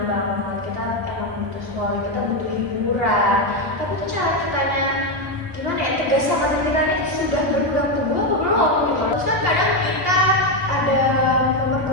banget, kita emang butuh scrolling, kita butuh hiburan, tapi tuh cara kitanya gimana ya, tegas sama diri kita nih sudah berpegang teguh apa belum gitu. Terus kan kadang kita ada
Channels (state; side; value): late; left; 2.6 ms